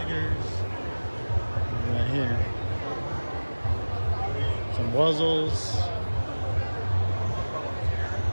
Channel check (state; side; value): inverted; both; correlation -1.00